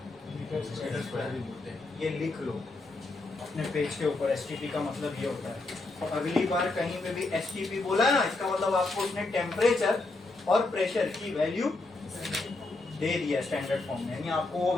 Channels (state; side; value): quieter; right; 3.2 dB